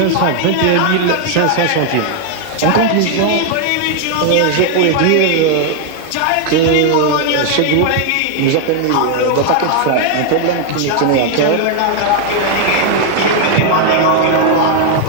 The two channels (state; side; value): different; both; correlation 0.00